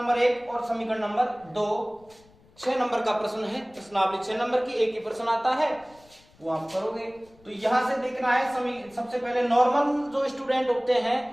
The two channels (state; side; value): noise; left; rumble, 28 dB below the sound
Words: 1 और समीकरण नंबर 2। 6 नंबर का प्रश्न है, प्रश्नावली 6 नंबर की, एक ही प्रश्न आता है, वो आप करोगे। तो यहां से देखना है, सबसे पहले नॉर्मल जो स्टूडेंट होते